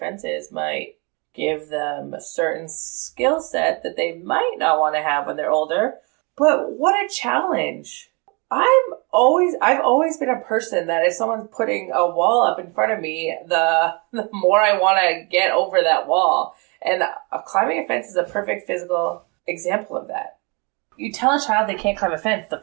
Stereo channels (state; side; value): quieter; left; 31.1 dB